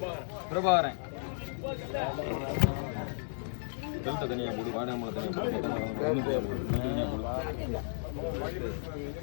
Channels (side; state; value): right; silent; digital silence